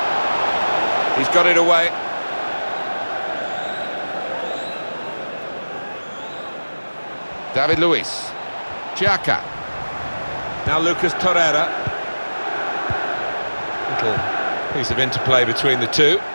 He's got it away. David Luiz. Xhaka. Now Lucas Torreira. Little piece of interplay between the two.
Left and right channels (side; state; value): both; inverted; correlation -1.00